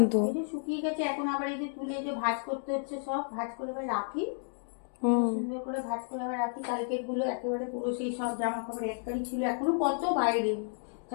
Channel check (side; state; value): right; silent; digital silence